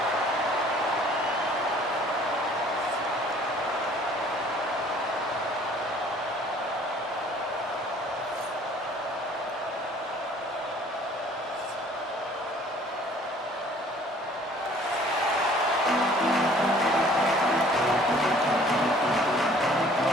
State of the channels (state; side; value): normal; both; correlation 0.54